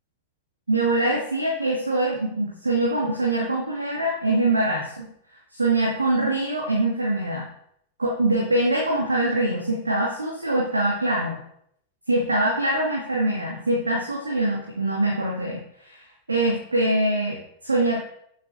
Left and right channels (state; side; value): inverted; both; correlation -0.57